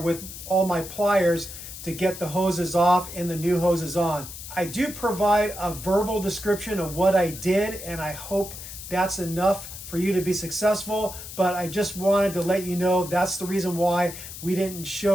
all my pliers to get the hoses off and the new hoses on. I do provide a verbal description of what I did, and I hope that's enough for you to be successful, but I just wanted to let you know that's the reason why we didn't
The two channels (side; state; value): left; noise; hiss, 11 dB below the sound